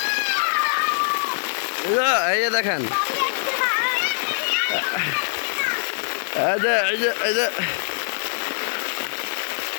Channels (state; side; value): silent; right; digital silence